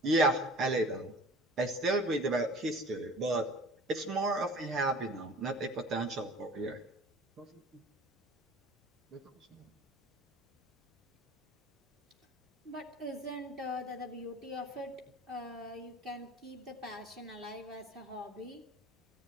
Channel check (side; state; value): both; normal; correlation 0.45